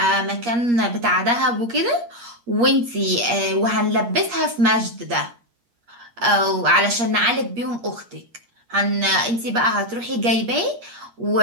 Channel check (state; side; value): late; left; 8.5 ms